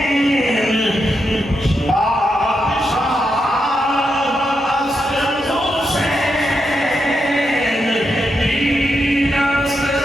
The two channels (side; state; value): both; normal; correlation 0.84